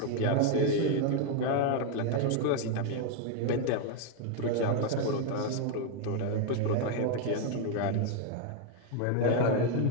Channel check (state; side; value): different; both; correlation 0.00